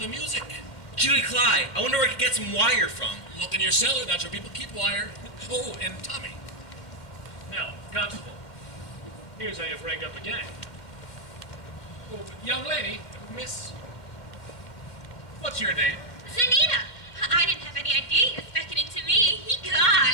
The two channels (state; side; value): late; right; 2.1 ms